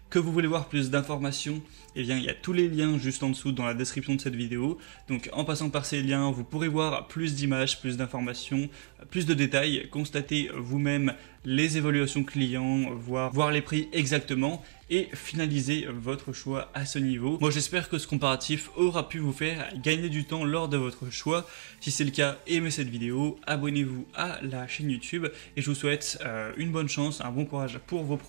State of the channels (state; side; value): quieter; left; 30.3 dB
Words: que vous voulez voir plus d'informations, eh bien il y a tous les liens juste en dessous dans la description de cette vidéo. Donc en passant par ces liens, vous pourrez voir plus d'images, plus d'informations, plus de détails, constater vous-même les évaluations clients, voir les prix exactement et finaliser votre choix à ce niveau. Moi j'espère que ce comparatif aura pu vous faire gagner du temps lors de votre choix. Si c'est le cas, aimez cette vidéo, abonnez-vous à la chaîne YouTube et je vous souhaite une bonne chance, un bon courage pour vos